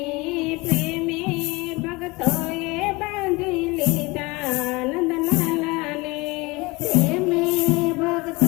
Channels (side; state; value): right; quieter; 24.0 dB